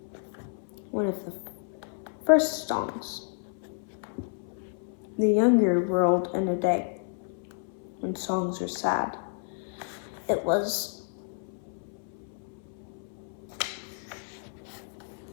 one of the first songs the younger world in a day, when songs are sad. It was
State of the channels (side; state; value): right; silent; 57 dB below the other